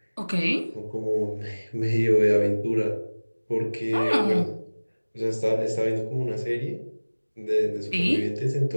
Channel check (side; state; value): both; inverted; correlation -1.00